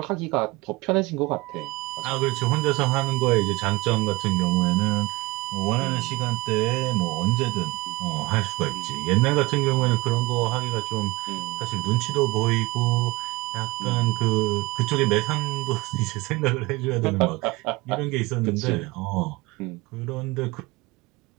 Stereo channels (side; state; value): left; quieter; 22.8 dB